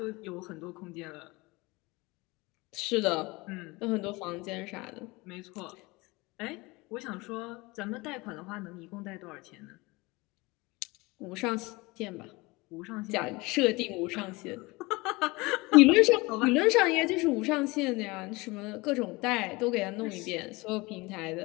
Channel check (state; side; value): quieter; right; 23.6 dB